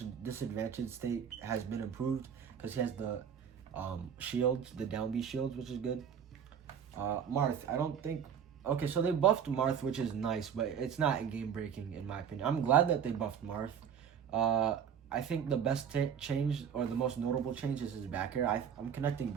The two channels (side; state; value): left; quieter; 8.0 dB